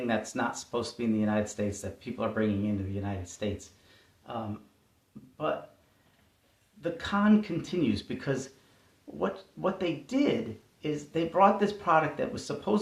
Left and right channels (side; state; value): both; identical; correlation 1.00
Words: that's not supposed to be in the United States, that people are bringing into the United States. But the con continues, because what they did is they brought this product that was